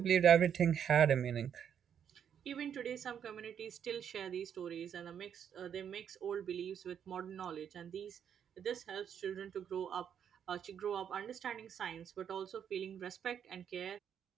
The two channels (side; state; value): left; quieter; 8.5 dB